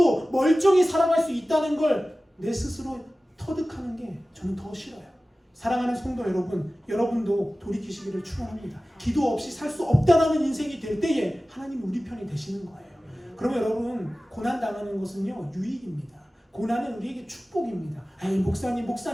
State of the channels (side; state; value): both; normal; correlation 0.96